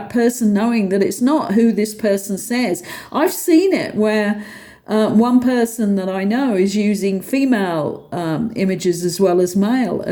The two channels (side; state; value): both; identical; correlation 1.00